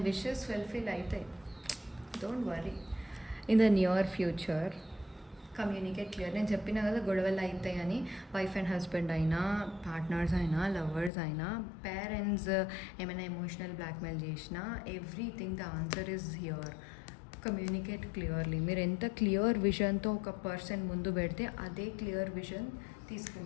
విషెస్ ఫుల్ఫిల్ అవుతాయి, don't worry. In the near future communicate clear. నేను చెప్పిన కదా గొడవలు అవుతాయని. వైఫ్ అండ్ హస్బెండ్ అయినా, పార్ట్నర్స్ అయినా, లవర్స్ అయినా, పేరెంట్స్ ఏమైనా ఎమోషనల్ బ్లాక్మెయిల్ చేసినా, everything the answer is here. Communicate clearly. మీరు ఎంత క్లియర్ విజన్తో ఒక పర్సన్ ముందు పెడితే అదే క్లియర్ విజన్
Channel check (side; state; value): right; drops out; at 11.1 s